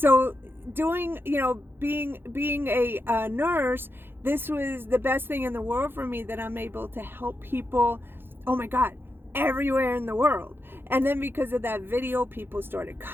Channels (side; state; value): left; late; 0.10 ms